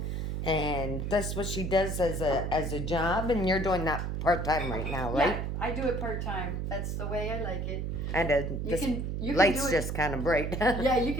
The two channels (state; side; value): noise; right; hum, 2 dB below the sound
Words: and that's what she does as a job. And you're doing that part time right now, right? Yeah, I do it part time. That's the way I like it. And You can lights do it. just kind of bright. Yeah, you